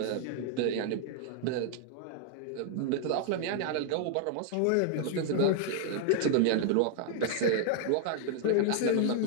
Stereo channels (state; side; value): different; both; correlation 0.00